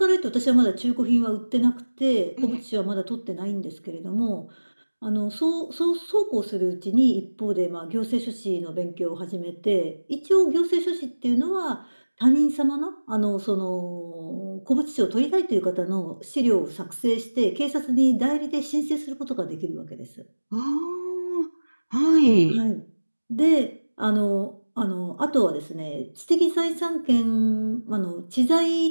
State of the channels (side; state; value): both; inverted; correlation -1.00